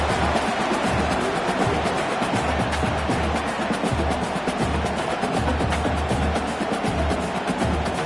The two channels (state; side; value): identical; both; correlation 1.00